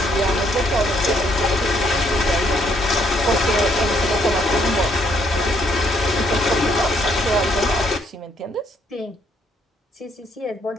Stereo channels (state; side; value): normal; both; correlation 0.69